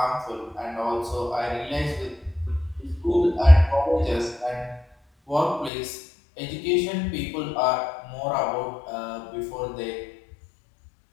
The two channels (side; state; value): right; drops out; at 5.7 s